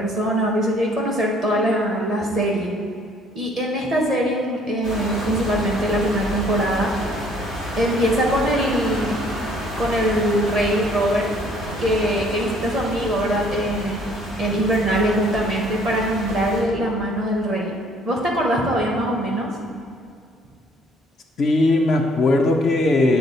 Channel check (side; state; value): both; normal; correlation 0.61